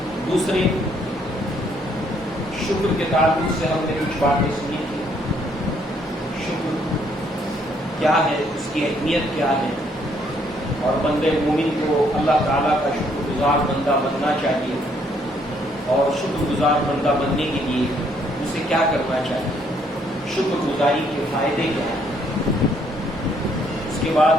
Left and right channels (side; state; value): both; normal; correlation 0.68